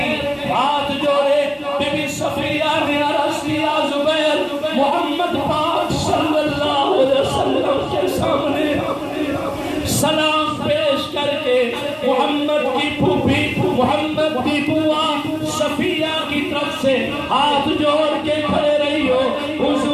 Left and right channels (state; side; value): identical; both; correlation 1.00